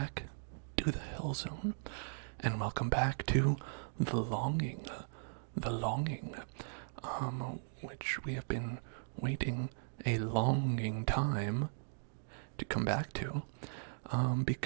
to the Hill Zone, and welcome back to the longing, which we have been waiting a longing time to come back to,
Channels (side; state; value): left; silent; digital silence